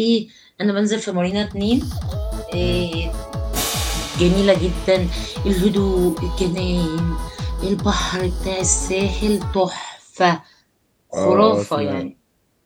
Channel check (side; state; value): both; identical; correlation 1.00